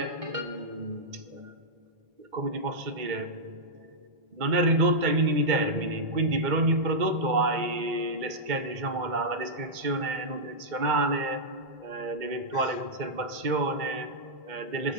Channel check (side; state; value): left; late; 2.1 ms